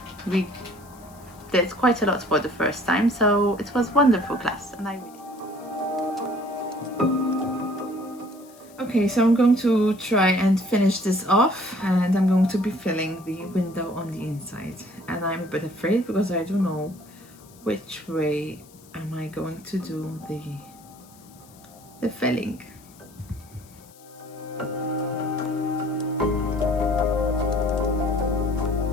we did quite a lot for the first time, so it was a wonderful class, and I really... Okay, so I'm going to try and finish this off, and I'm going to be filling the window on the inside, and I'm a bit afraid because I don't know which way am I going to do the filling.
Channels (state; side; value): noise; left; hiss, 25 dB below the sound